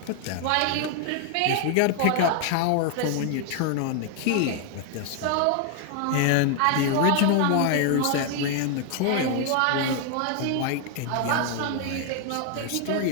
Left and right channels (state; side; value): different; both; correlation 0.00